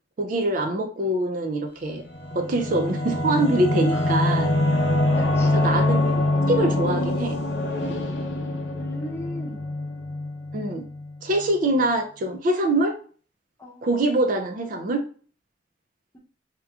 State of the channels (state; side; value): normal; both; correlation 0.46